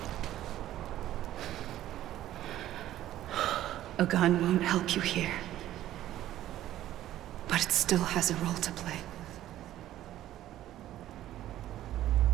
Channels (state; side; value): quieter; left; 13.3 dB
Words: A gun won't help you here. But it still has a role to play.